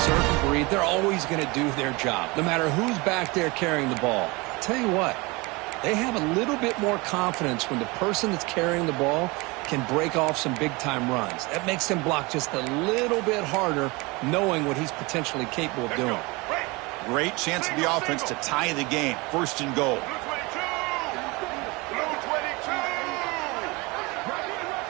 breed. They're always going to do their job, no matter who's back there carrying the ball. I'll tell you what, they have a little bit more confidence when the person that's carrying the ball can break off some big-time runs. That makes them block just a little bit harder, knowing what he's potentially capable of doing. Great chance for the offense to tie the game. First and goal.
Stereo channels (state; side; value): quieter; left; 25.2 dB